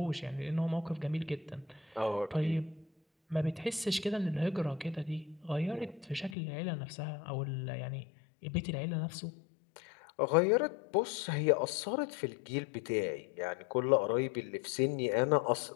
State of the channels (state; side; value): drops out; right; at 6.4 s